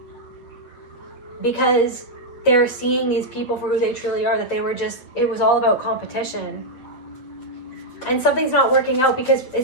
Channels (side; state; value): right; late; 8.0 ms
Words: because they're seeing these people for who they truly are, that it was all about competition. And something's not working out because